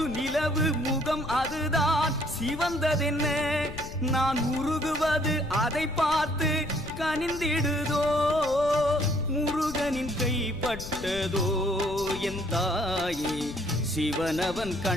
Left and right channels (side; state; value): left; noise; rumble, 11 dB below the sound